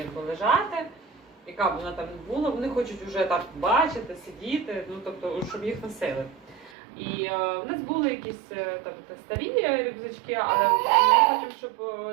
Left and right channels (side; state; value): left; drops out; at 6.7 s